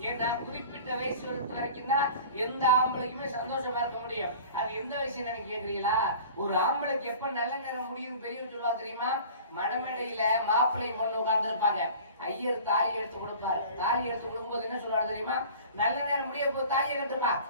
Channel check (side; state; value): both; inverted; correlation -0.42